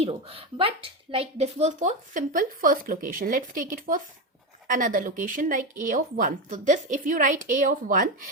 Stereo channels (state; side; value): normal; both; correlation 0.14